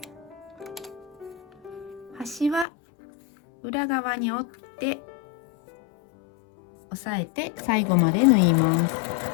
端は裏側に折って押さえて最後まで縫います。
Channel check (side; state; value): right; drops out; at 2.7 s